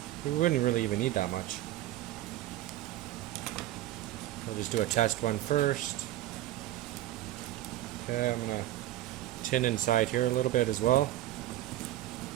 we wouldn't really even need that much. We'll just do a test one first. Okay, I'm going to tin inside here a little bit as well.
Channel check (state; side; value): quieter; left; 14.5 dB